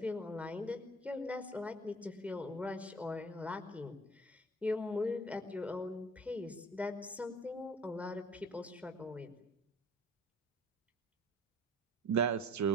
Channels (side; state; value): both; normal; correlation 0.46